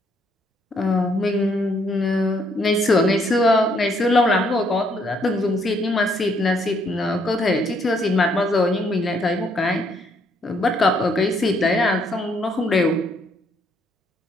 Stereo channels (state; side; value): normal; both; correlation 0.70